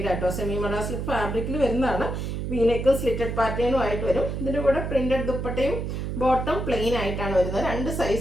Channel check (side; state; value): right; noise; hum, 3 dB below the sound